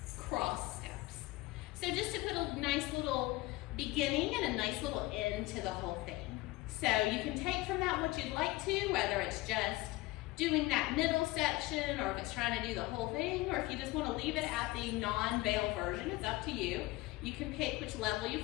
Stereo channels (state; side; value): quieter; right; 19.9 dB